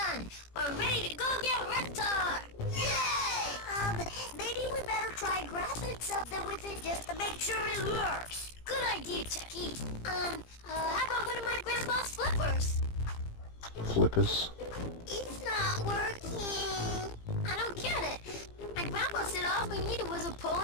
We're ready to go get Reptar. Yay! Maybe we better try grabbing something with it just to make sure it works. Good idea, Chucky. How about one of my grandpa's flippers? Flippers. It's not working. I don't get it. My grandpa said all we needed was a pole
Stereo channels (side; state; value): right; late; 17 ms